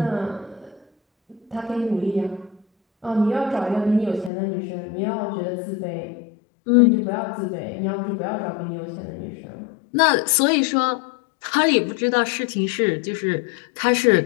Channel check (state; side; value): drops out; right; at 4.3 s